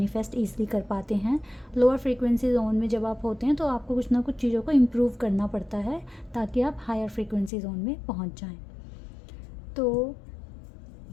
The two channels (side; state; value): right; drops out; at 7.5 s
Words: ईज़िली कर पाते हैं। लोअर फ्रीक्वेंसी जोन में जब आप होते हैं तो आपको कुछ ना कुछ चीज़ों को इम्प्रूव करना पड़ता है ताकि आप हायर फ्रीक्वेंसी जोन में पहुंच जाएं। तो